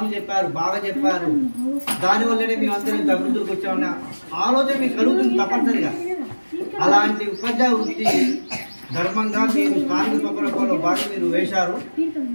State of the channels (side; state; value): both; inverted; correlation -1.00